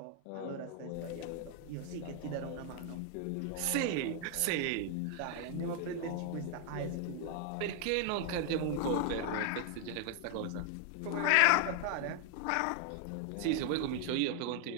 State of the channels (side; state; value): both; different; correlation 0.00